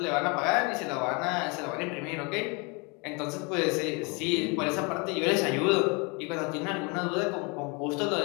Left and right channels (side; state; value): right; quieter; 30.3 dB